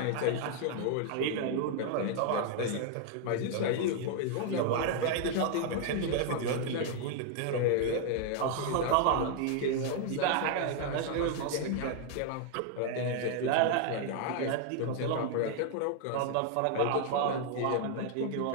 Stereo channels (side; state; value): both; different; correlation 0.00